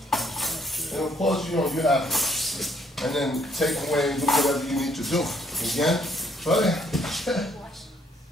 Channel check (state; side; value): normal; both; correlation 0.67